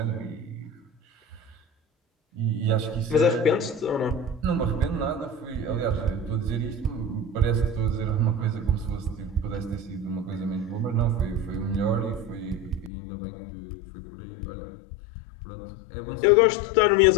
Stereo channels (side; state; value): right; drops out; at 12.9 s